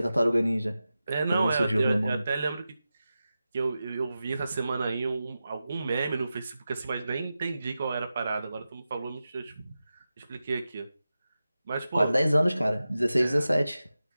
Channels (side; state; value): both; inverted; correlation -0.93